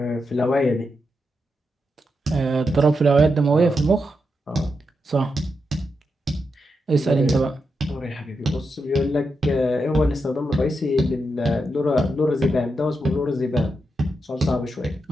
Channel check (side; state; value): both; normal; correlation 0.85